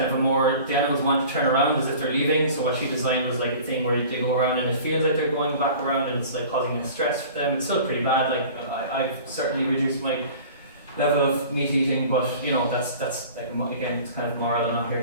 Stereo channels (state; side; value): inverted; both; correlation -0.43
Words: of the animals want to turn around as if they're leaving, so what she designed was like a thing where they go around and it feels like they're going back around and it's like causing stress for them. It's still pretty bad, like I've certainly reduced my level of meat eating, but you know, that's like, again, it's kind of moral. I'm not